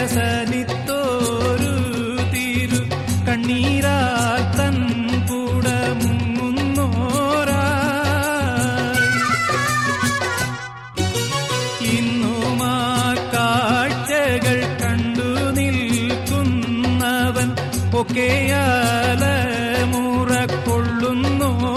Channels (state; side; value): identical; both; correlation 1.00